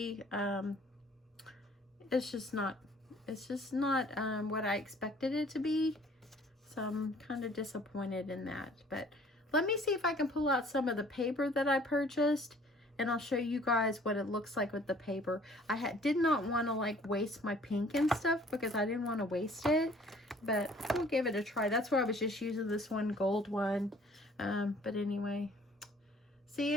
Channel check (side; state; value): both; normal; correlation 0.55